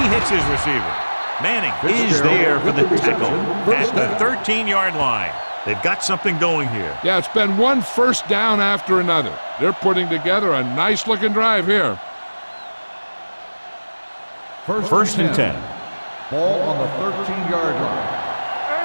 hits his receiver. Manning is there for the tackle at the 13-yard line. They've got something going here. Yeah, it's been one first down after another. They're putting together a nice-looking drive here. First and 10. Ball on the 13-yard line.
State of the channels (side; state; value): both; inverted; correlation -1.00